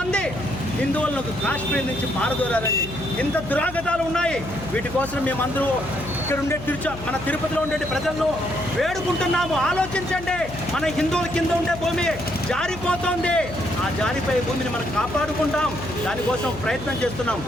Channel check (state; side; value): noise; left; hum, 13 dB below the sound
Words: హిందువులను కాశ్మీర్ నుంచి పారదోరారండి. ఇంత దురాగతాలు ఉన్నాయి. వీటి కోసం మేమందరూ ఇక్కడ ఉండే మన తిరుపతిలో ఉండే ప్రజలను వేడుకుంటున్నాము. ఆలోచించండి, మన హిందువుల కింద ఉండే భూమి జారిపోతుంది. ఆ జారిపోయే భూమిని మనం కాపాడుకుంటాం. దానికోసం ప్రయత్నం చేస్తున్నాం.